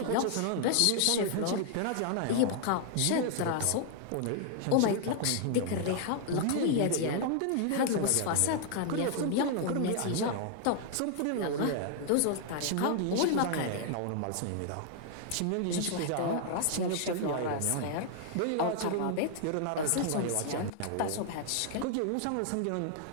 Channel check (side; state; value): both; different; correlation 0.00